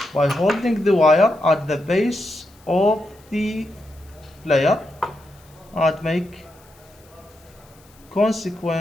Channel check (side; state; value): left; noise; hiss, 29 dB below the sound